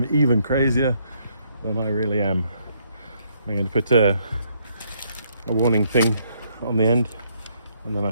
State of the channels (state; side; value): inverted; both; correlation -0.71